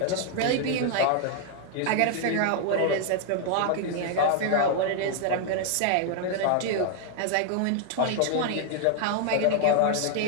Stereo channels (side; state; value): both; different; correlation 0.00